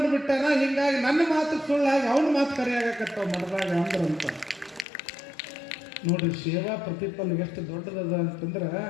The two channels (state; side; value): drops out; right; at 4.9 s